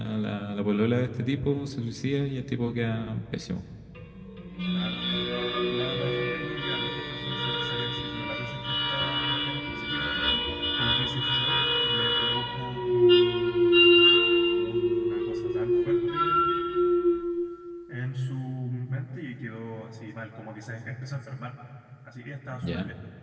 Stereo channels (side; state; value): both; identical; correlation 1.00